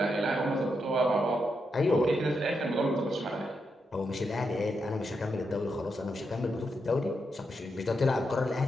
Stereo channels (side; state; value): both; normal; correlation 0.83